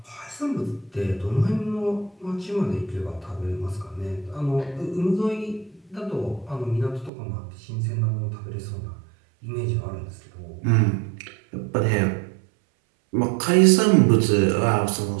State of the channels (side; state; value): left; drops out; at 7.1 s